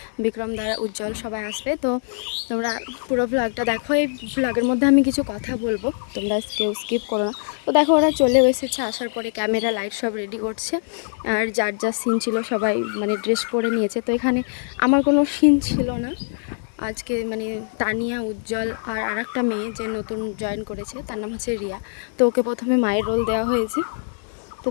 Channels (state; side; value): silent; right; digital silence